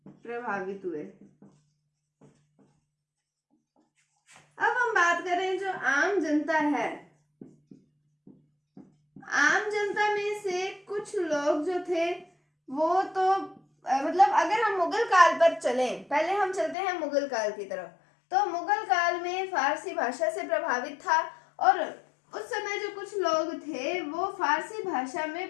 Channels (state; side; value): drops out; right; at 16.8 s